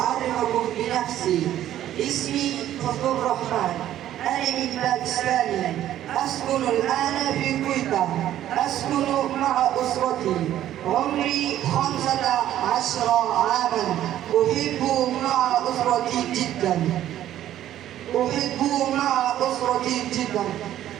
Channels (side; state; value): left; quieter; 12.2 dB